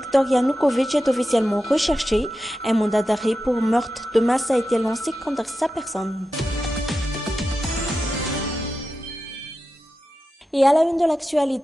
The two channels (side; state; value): both; normal; correlation 0.91